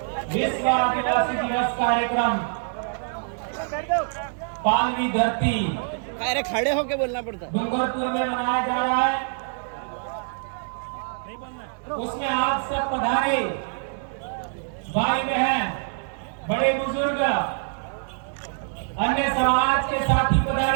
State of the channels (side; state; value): left; silent; 62 dB below the other